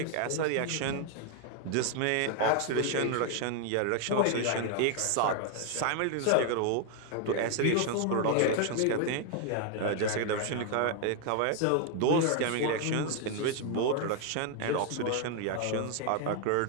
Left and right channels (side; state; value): both; different; correlation 0.00